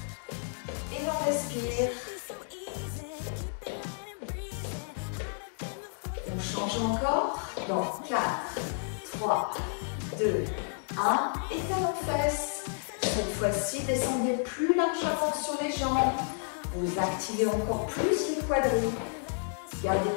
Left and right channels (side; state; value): right; silent; 57 dB below the other